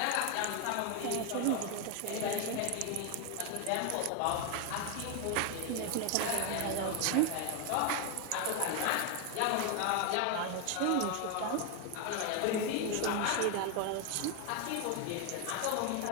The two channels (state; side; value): different; both; correlation 0.01